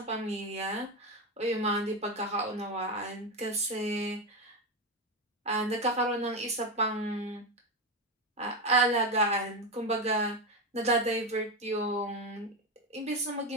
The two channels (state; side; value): normal; both; correlation 0.13